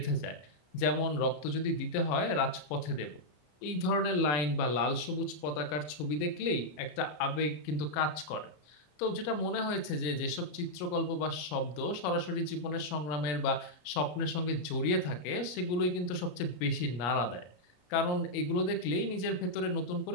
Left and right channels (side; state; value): right; late; 34 ms